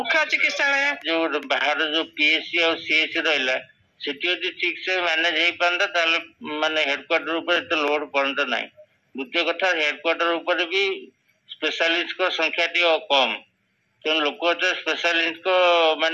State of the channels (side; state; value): both; identical; correlation 1.00